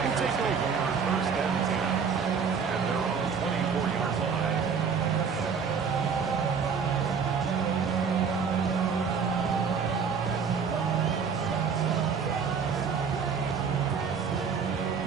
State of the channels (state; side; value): quieter; left; 6.1 dB